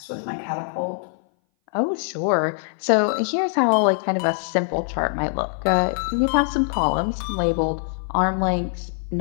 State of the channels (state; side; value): silent; right; 59 dB below the other